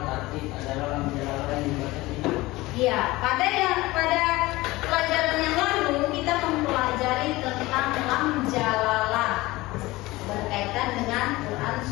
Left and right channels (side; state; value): right; quieter; 19.8 dB